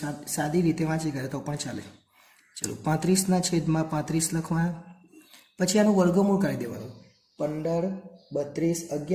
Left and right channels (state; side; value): identical; both; correlation 1.00